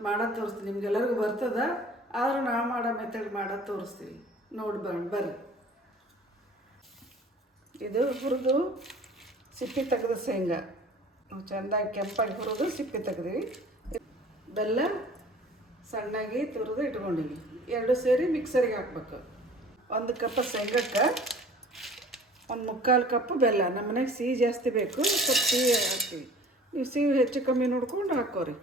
ಮಾಡೋದು ತೋರಿಸ್ತೀನಿ. ನಿಮ್ಗೆಲ್ಲರಿಗೂ ಬರ್ತದ, ಆದರೂ ನಾವು ಮಾಡೋ ಮೆಥಡ್ ಮಾಡೋದು ತೋರಿಸ್ತೀವಿ. ನೋಡಿ ಬರ್ರಿ. ಇದು ಹುರಿದು ಸಿಪ್ಪೆ ತೆಗೆದು ಶೇಂಗಾ ನಾವು ಚೆಂದಾಗಿ ಕೆಂಪಾಗಿ ಹುರಿದು ಸಿಪ್ಪೆ ತೆಗೆದಿವಿ. ಬೆಲ್ಲ ಸಣ್ಣಾಗಿ ತುರಿದು ಇಟ್ಕೊಂಡಿವಿ. ಎರಡು ಸೇರಿ ಮಿಕ್ಸರಿಗೆ ಹಾಕ್ಬೇಕು. 1 ಕಪ್ ಶೇಂಗಕ್ಕೆ 1/4 ಕಪ್ ಬೆಲ್ಲ. ನಮ್ಮ ಮನೆಗೆ ಸಿಹಿ ಜಾಸ್ತಿ ಬೇಕು, ಸ್ವಲ್ಪ ಸಿಹಿ ಹಾಕ್ತೀವಿ. ನೀವು ಸಿಹಿ ಹೆಚ್ಚು ಕಮ್ಮಿ ನೋಡ್ಕೊಂಡು ಹಾಕೋರಿ.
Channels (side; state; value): both; normal; correlation 0.47